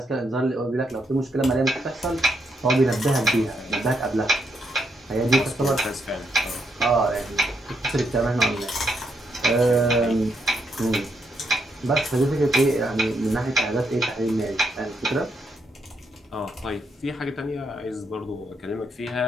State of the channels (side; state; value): both; normal; correlation 0.78